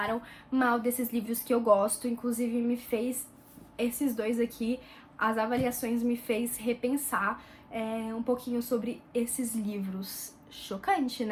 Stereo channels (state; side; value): identical; both; correlation 1.00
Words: mal desses livros que eu gosto, inclusive me fez, esses dois aqui, as avaliações me fez repensar um pouquinho sobre esses livros. Chocante,